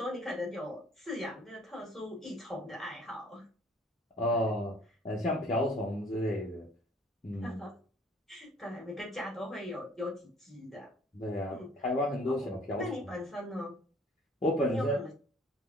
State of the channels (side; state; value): both; normal; correlation 0.55